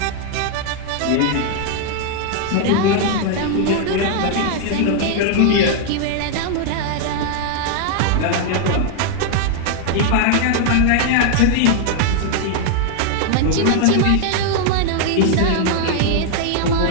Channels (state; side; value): different; both; correlation 0.00